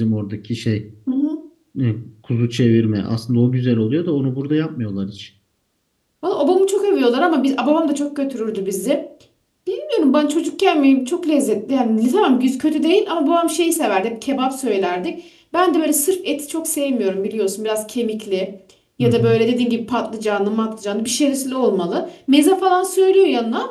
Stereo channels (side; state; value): both; identical; correlation 1.00